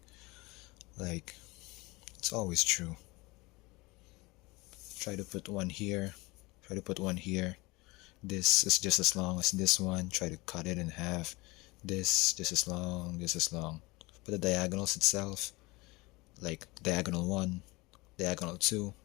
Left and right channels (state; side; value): quieter; right; 23.3 dB